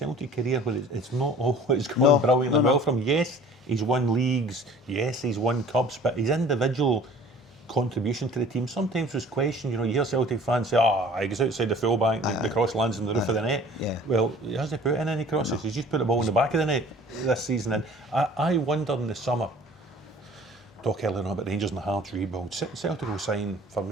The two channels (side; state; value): both; normal; correlation 0.48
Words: career where it's not always gone brilliantly well from him. Yes, he's won leagues. Yes, he's won cups, but his individual contribution to the team sometimes was questioned. You hear Celtic fans say, he goes outside the fullback, the cross lands on the roof of the net. Yeah. Well, he hasn't put in any crosses. He's just put the ball in the back of the net this season. And I wonder in the summer, talk earlier on about Rangers and the Hearts rebuild, Celtic will sign, for